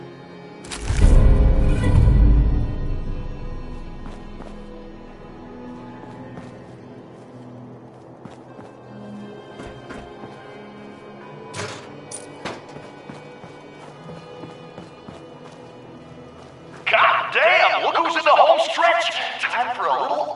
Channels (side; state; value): both; identical; correlation 1.00